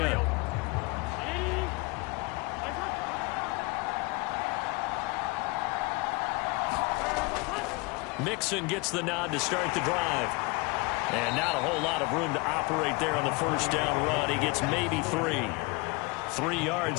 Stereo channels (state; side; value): quieter; right; 25.7 dB